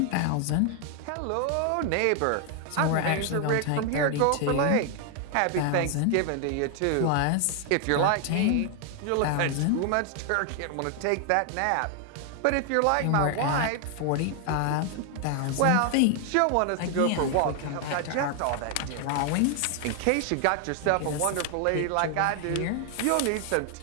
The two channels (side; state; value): both; different; correlation 0.00